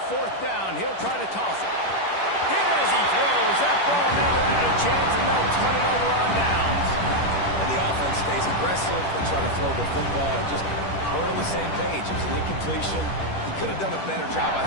4th down, he'll try to toss it. Hit as he throws. That ball never had a chance, and they'll turn it over on downs. And the offense stays aggressive. They try to throw the football and just we're on the same page. It was an incompletion. He could have done a better job, I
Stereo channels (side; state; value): right; late; 10 ms